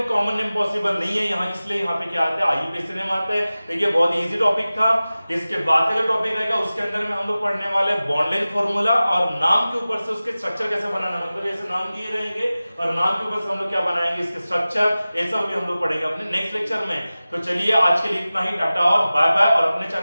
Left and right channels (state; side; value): inverted; both; correlation -0.97